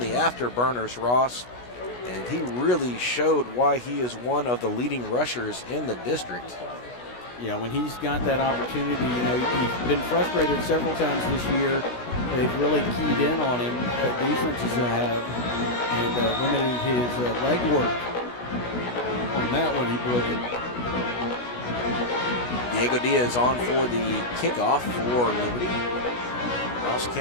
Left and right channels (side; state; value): right; late; 16 ms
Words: the afterburners, Ross, and he really showed why he is one of the leading rushers in the district. Yeah, when he's got that opportunity, you know, he's been frustrated several times this year. They've really keyed in on him, defenses have, and limited his leg work. On that one, he blew it. Diego Diaz on for the kickoff for Liberty. Ross